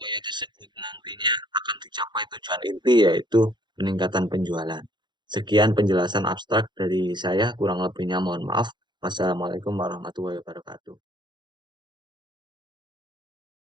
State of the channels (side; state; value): left; late; 0.22 ms